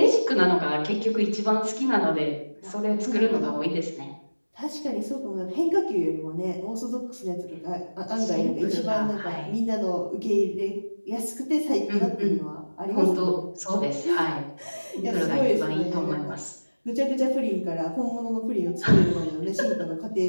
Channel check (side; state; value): both; inverted; correlation -1.00